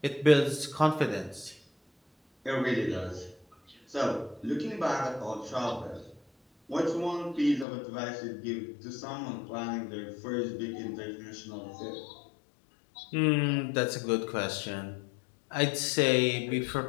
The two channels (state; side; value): drops out; right; at 7.7 s